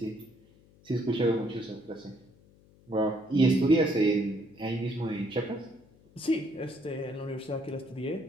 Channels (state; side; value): noise; left; hum, 27 dB below the sound